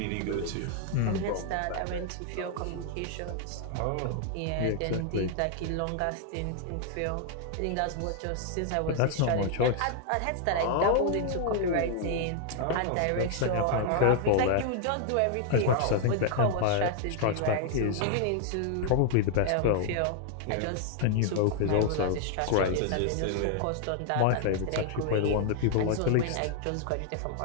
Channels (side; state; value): both; different; correlation 0.00